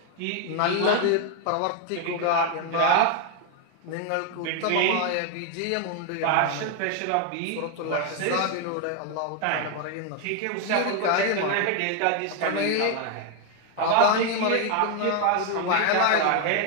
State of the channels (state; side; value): different; both; correlation 0.01